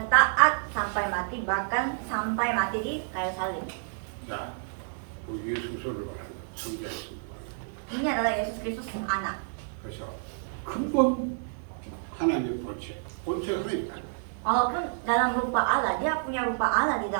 taat sampai mati, bahkan sampai mati di kayu salib. 자, 우리 예수를 말합니다. 성자 예수를 말합니다. Ini adalah Yesus Kristus yang anak. 그래서 근본 하나님의 본체, 본체가 하나님이다. Walaupun dalam rupa Allah, dia punya rupa Allah di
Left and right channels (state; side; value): silent; left; digital silence